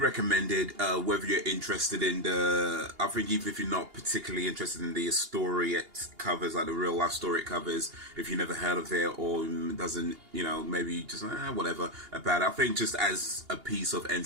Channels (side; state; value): left; late; 2.8 ms